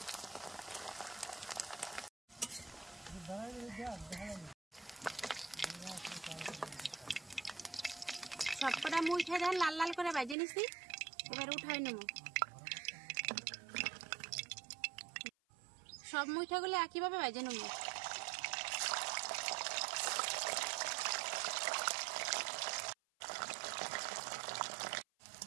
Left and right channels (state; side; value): drops out; left; at 10.4 s